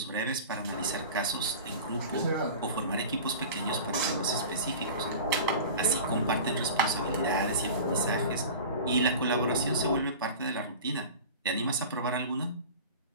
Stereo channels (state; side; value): inverted; both; correlation -0.36